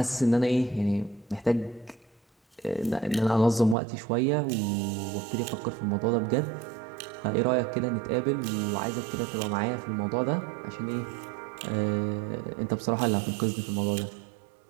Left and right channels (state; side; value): drops out; left; at 3.8 s